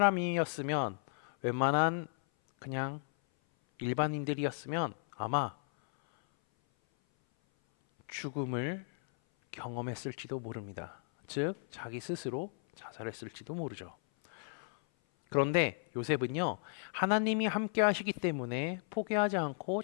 웬만한 그냥 일반인들이었으면 아마 죽음을 경험했을지도 모릅니다. 즉 자기 스스로 자살했을지도 모르죠. 그런데 요셉은요, 하나님이 함께 하시기 때문에 포기하지 않고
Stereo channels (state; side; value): silent; right; 55 dB below the other